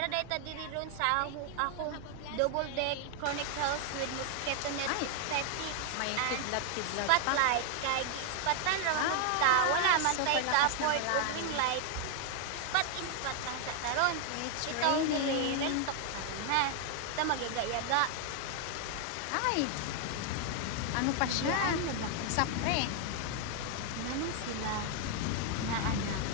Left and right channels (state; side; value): different; both; correlation 0.00